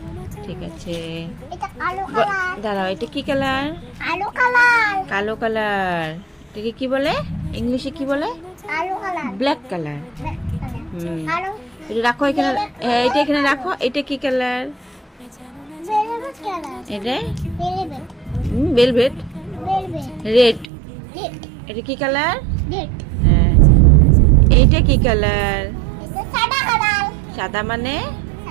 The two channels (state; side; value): drops out; left; at 20.7 s